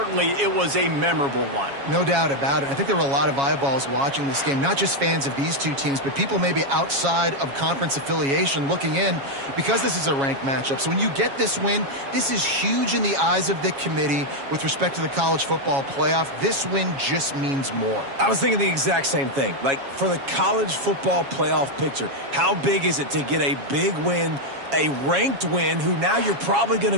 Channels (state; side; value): late; left; 7.3 ms